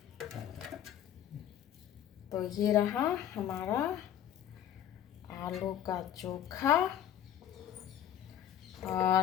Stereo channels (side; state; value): right; quieter; 10.6 dB